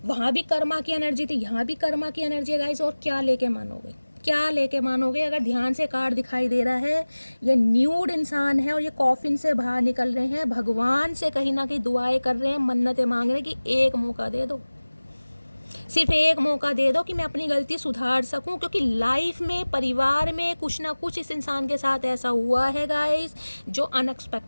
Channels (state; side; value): inverted; both; correlation -1.00